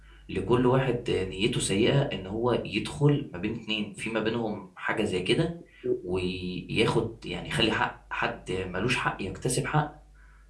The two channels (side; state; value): both; identical; correlation 1.00